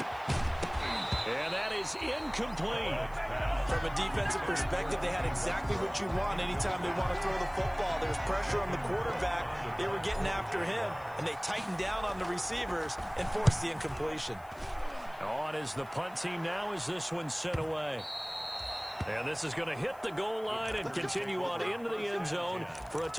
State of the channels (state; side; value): noise; left; hiss, 26 dB below the sound